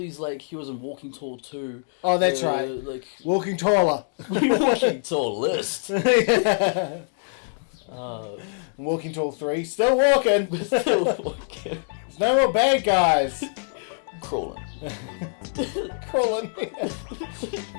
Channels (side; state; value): right; silent; digital silence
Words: he was in Walking Tall 2. Oh, that's right. Like Walking Taller. Walking Tall list. Yeah. Walking Tall 3. Still walking. Still walking. There's no more bad guys. Crawling. Crawling.